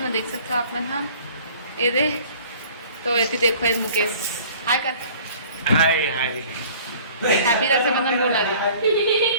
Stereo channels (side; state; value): both; inverted; correlation -0.50